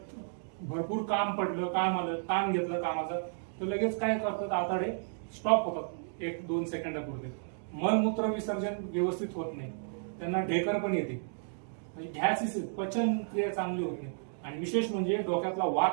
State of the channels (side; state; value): left; silent; digital silence